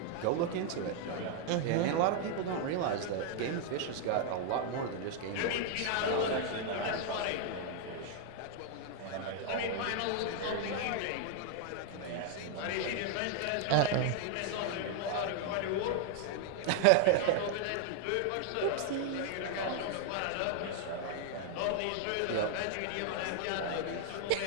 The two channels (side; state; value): both; different; correlation 0.00